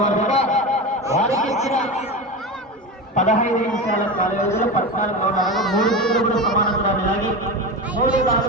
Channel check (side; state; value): both; normal; correlation 0.23